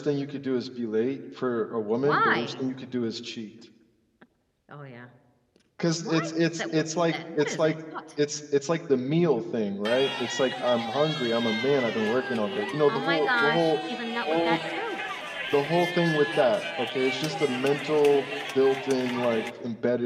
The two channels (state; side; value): identical; both; correlation 1.00